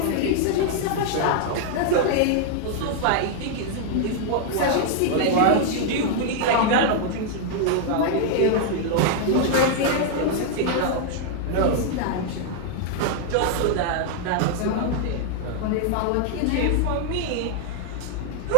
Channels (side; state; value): both; different; correlation 0.00